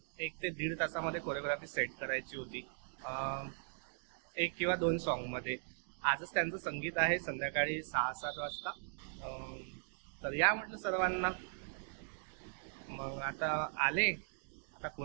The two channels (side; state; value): left; silent; digital silence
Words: 1 ते 1.5 तासामध्ये कोरिओग्राफी सेट करायची होती, 1 किंवा 2 सॉन्गमध्ये. आजच त्यांचं संगीत आहे संध्याकाळी 6-7 वाजता. तर या म्हटलं सर्वांना. मग आता आले, आता